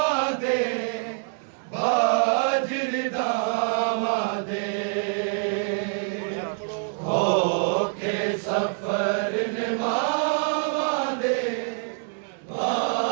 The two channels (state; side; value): silent; left; 57 dB below the other